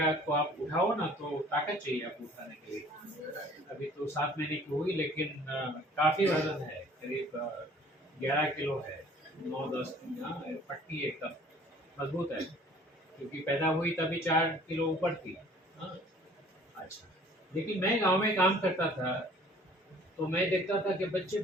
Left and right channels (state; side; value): normal; both; correlation 0.53